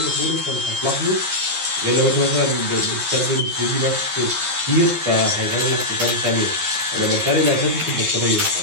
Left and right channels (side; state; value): left; late; 11 ms